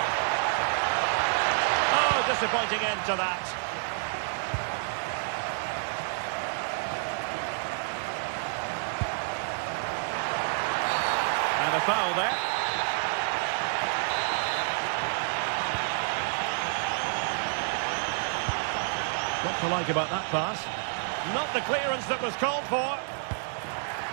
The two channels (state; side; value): silent; left; 59 dB below the other